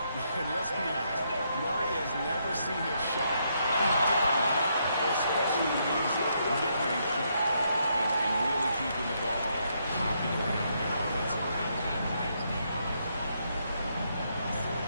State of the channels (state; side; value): inverted; both; correlation -0.76